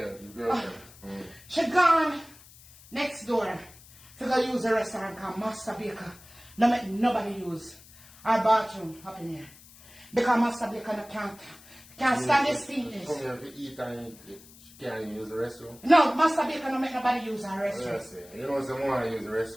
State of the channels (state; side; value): noise; left; hiss, 22 dB below the sound